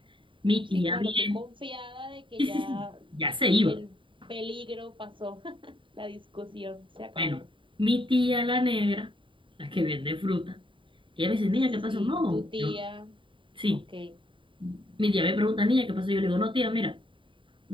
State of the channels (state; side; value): late; left; 0.24 ms